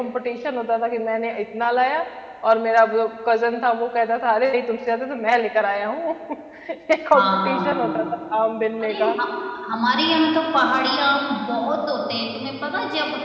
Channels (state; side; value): identical; both; correlation 1.00